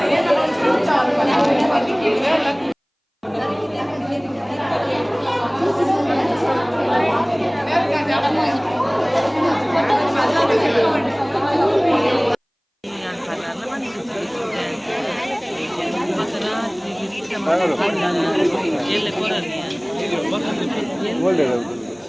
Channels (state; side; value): identical; both; correlation 1.00